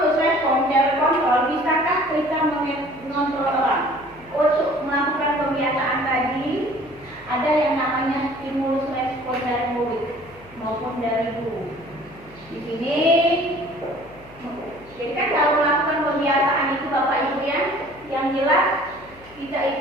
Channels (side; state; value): left; noise; hum, 24 dB below the sound